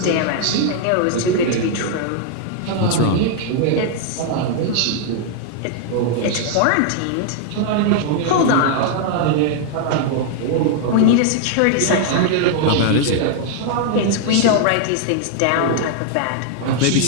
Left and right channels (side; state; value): both; different; correlation 0.00